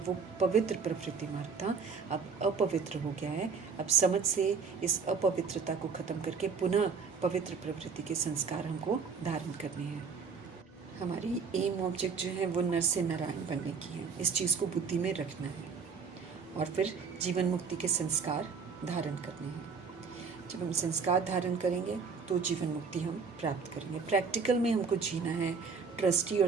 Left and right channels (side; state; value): left; quieter; 5.4 dB